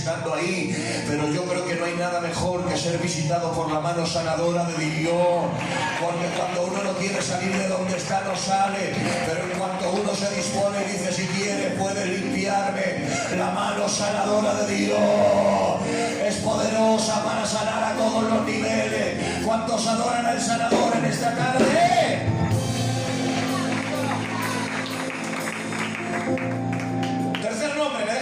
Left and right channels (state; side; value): identical; both; correlation 1.00